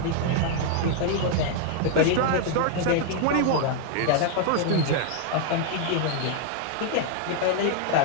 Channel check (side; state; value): both; different; correlation 0.00